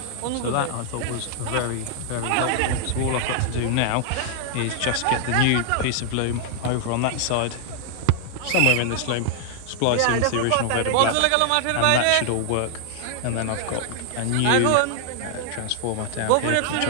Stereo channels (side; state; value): both; different; correlation 0.00